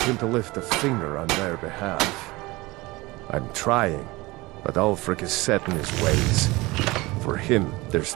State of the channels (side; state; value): left; quieter; 21.7 dB